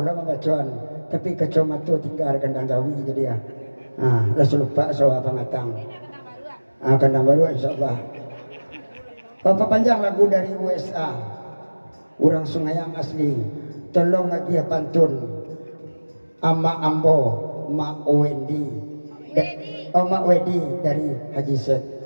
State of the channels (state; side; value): inverted; both; correlation -1.00